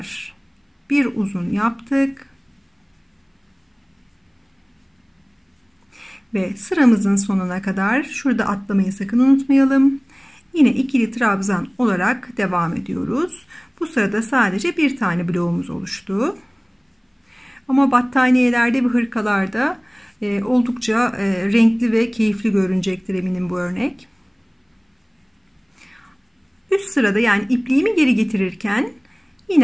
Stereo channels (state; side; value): identical; both; correlation 1.00